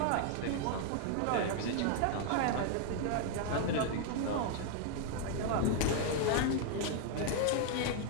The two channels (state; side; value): different; both; correlation 0.00